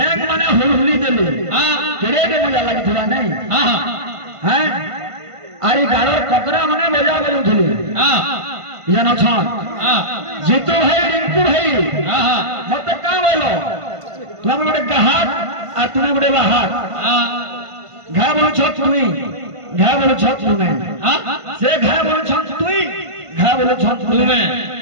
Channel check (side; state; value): left; late; 1.5 ms